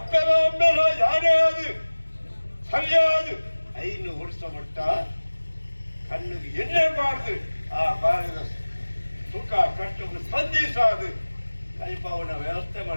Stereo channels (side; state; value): both; inverted; correlation -1.00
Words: ಯಾರೇ ಅದು ಸರಿಯಾದ 5 ವರ್ಷ ಮಟ್ಟ ಕಣ್ಣಿಗೆ ಎಣ್ಣೆ ಮಾಡ್ದು ಆ ಬಾರದ ಸುಖ ಕಷ್ಟಕ್ಕೆ ಸ್ಪಂದಿಸಾದು ಕೈಪವನ ವ್ಯವಸ್ಥೆ